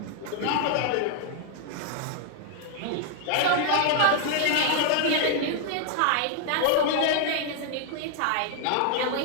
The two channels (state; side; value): different; both; correlation 0.00